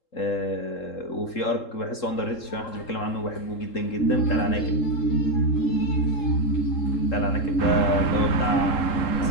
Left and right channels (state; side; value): late; right; 3.7 ms